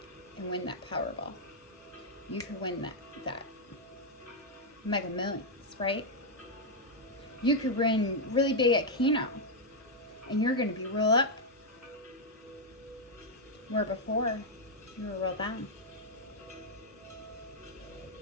and win that Powerball. You could win that Mega Millions, right? You could win really big at Keno and you're going to be real up. Where before, you were real down.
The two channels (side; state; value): both; normal; correlation -0.01